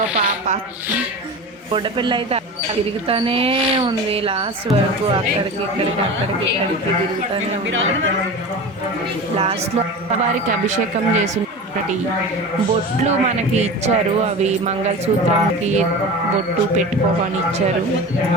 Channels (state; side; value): normal; both; correlation 0.31